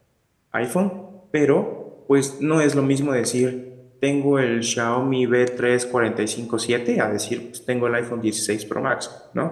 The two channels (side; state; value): both; identical; correlation 1.00